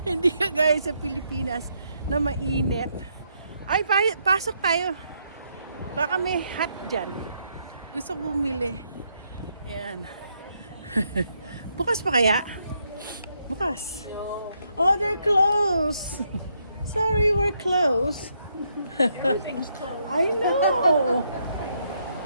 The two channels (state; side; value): inverted; both; correlation -0.76